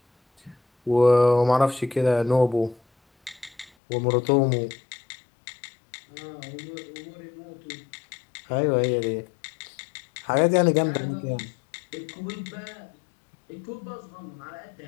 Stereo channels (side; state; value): right; drops out; at 3.7 s